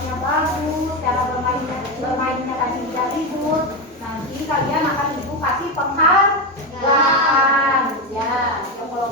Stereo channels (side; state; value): both; normal; correlation 0.13